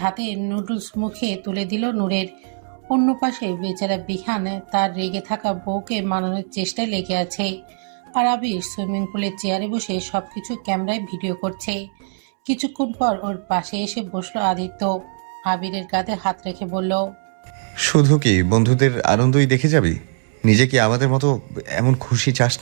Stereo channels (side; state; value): left; silent; 65 dB below the other